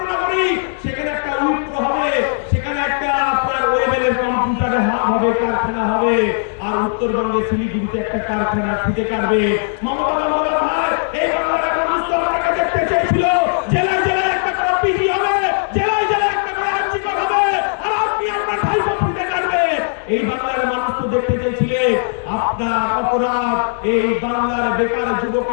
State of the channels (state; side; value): silent; right; digital silence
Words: সেখানে একটা উইপ্রো হবে, সেখানে একটা আপনার ওয়েবেলের কম্পিউটারে হাব হবে, কারখানা হবে। আর উত্তরবঙ্গে শিলিগুড়িতে একটা কারখানা ফিতে কাটবে। মমতা বন্দ্যোপাধ্যায়, এই বাংলার মানুষ তো আপনাকে দেখতে চেয়েছিল জেলায় জেলায় একটা করে পিজি হবে, জেলায় জেলায় একটা করে আর্চিকর হবে, আর আপনি আপনার ভাইপো ফিতে কাটবে। এই বাংলার মানুষ তো দেখতে চেয়েছিলেন আপনার অপরাধ এই বাংলার বেকার